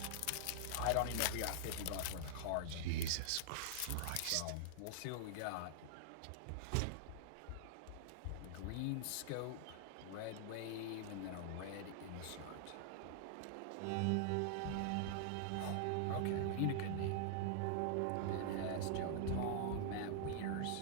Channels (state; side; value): different; both; correlation -0.01